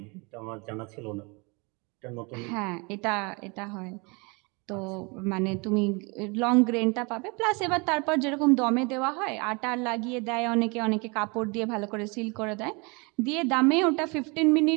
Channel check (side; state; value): left; quieter; 29.6 dB